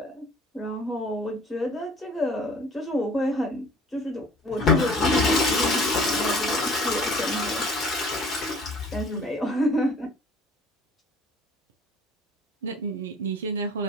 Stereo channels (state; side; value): normal; both; correlation 0.50